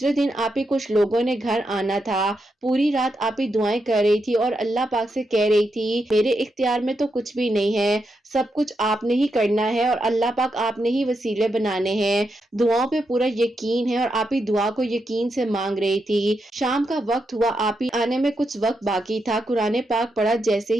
دن آپ ہی کچھ لوگوں نے گھر آنا تھا۔ پوری رات آپ ہی دعائیں کر رہی تھی اور اللہ پاک سے کہہ رہی تھی میرے اختیار میں تو کچھ بھی نہیں ہے، سب کچھ آپ نے ہی کرنا ہے اور اللہ پاک آپ نے ہی وسیلے بنانے ہیں۔ دعاؤں پہ پورا یقین ہے اور آپ ہی دعا کو یقین سے مانگ رہی تھی۔ شام کا وقت ہوا، آپ ہی آنے میں کچھ وقت باقی تھا۔ قرآن پاک پڑھا جیسے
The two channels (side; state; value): both; normal; correlation 0.84